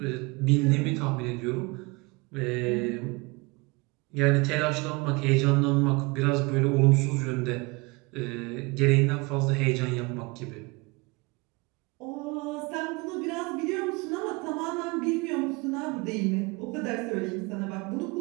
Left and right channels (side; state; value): left; quieter; 26.5 dB